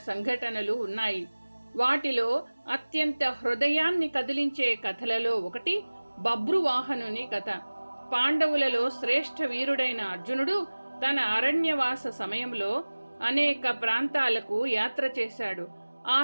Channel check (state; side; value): inverted; both; correlation -1.00